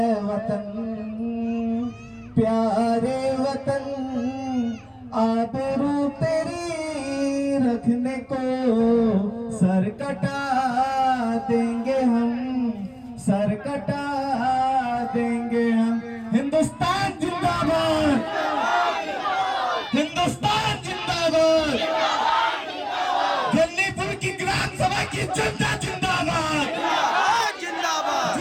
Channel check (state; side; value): identical; both; correlation 1.00